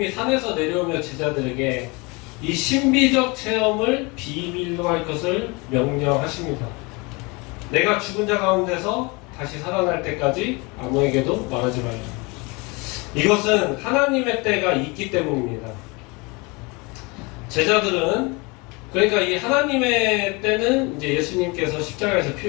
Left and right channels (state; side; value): quieter; right; 27.4 dB